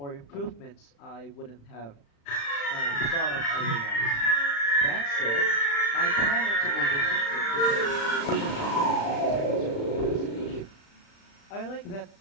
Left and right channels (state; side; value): late; right; 35 ms